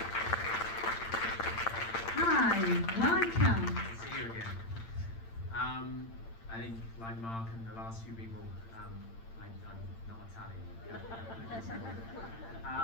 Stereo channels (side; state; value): right; late; 8.8 ms